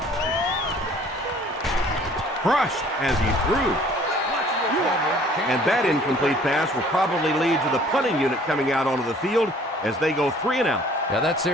Crushed as he threw. And that incomplete pass will probably lead to the punting unit coming out onto the field as they go 3 and out. Yeah, that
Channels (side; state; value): both; normal; correlation 0.54